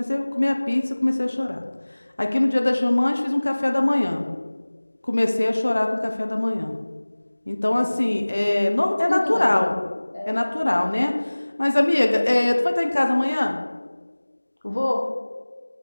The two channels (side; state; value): both; inverted; correlation -1.00